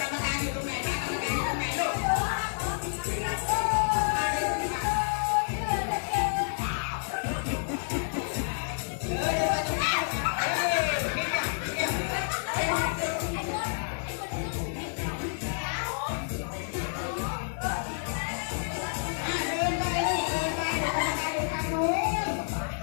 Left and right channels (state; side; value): silent; right; digital silence